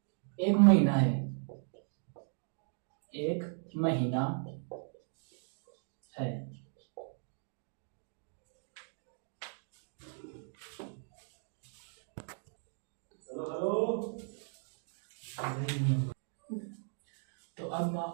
एक महीना है, एक महीना है। तो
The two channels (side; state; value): left; silent; digital silence